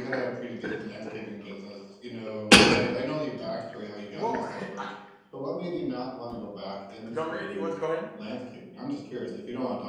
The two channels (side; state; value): both; identical; correlation 1.00